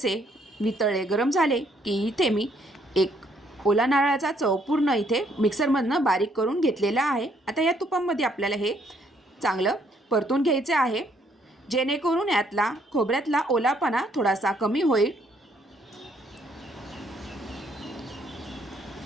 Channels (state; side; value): normal; both; correlation 0.68